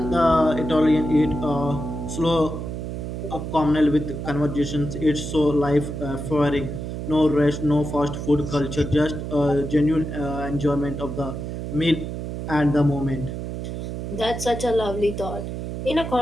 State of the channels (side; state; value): right; noise; hum, 5 dB below the sound